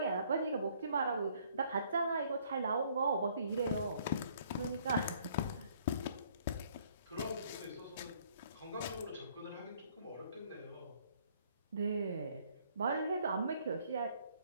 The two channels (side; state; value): both; inverted; correlation -0.62